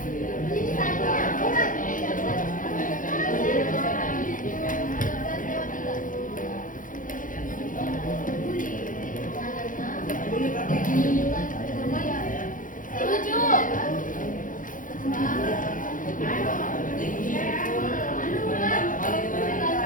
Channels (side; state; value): right; late; 0.39 ms